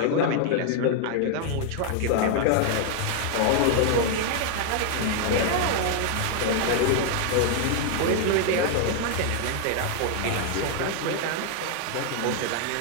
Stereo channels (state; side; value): different; both; correlation 0.00